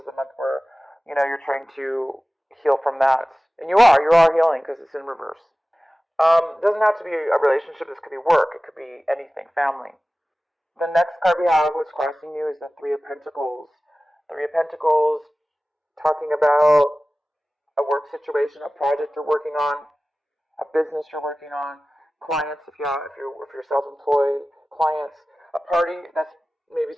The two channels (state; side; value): normal; both; correlation 0.97